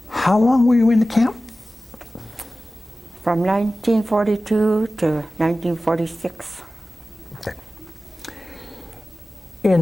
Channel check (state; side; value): normal; both; correlation 0.96